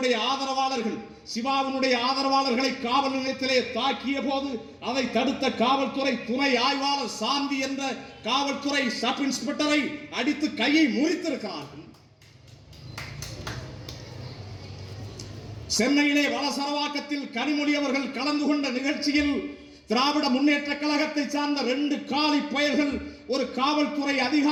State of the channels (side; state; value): both; identical; correlation 1.00